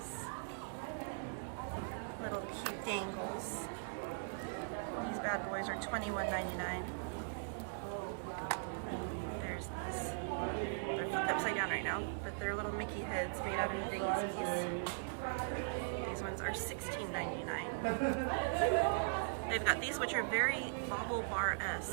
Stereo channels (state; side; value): silent; left; digital silence